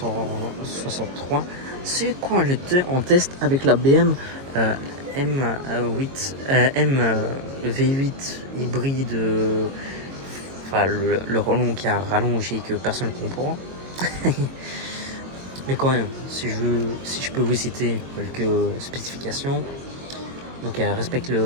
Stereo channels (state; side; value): late; left; 22 ms